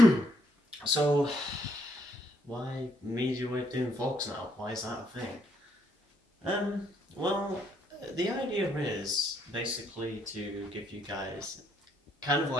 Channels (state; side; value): normal; both; correlation 0.72